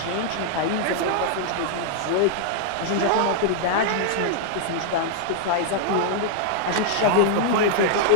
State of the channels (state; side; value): different; both; correlation -0.01